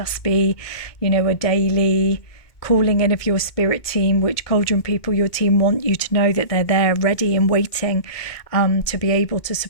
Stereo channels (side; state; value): right; late; 2.2 ms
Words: be, a daily calling in of your spirit team, which Cauldron people, your team, want you to know that they're there ready and waiting to be able to